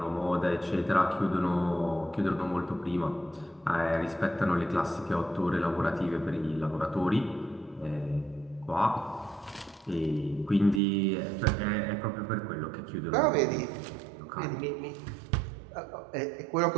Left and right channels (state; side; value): drops out; left; at 10.8 s